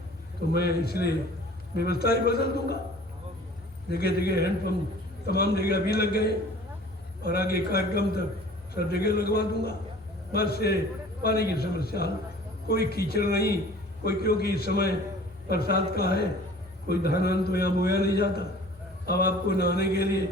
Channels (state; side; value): normal; both; correlation 0.47